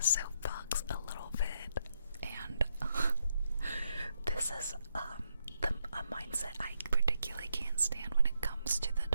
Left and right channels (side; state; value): both; inverted; correlation -0.79